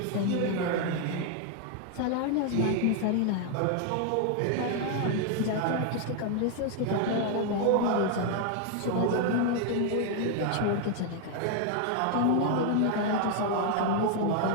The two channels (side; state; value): both; different; correlation 0.00